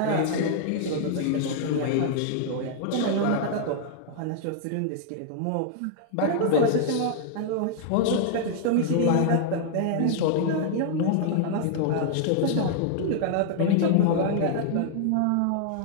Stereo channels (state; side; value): different; both; correlation -0.01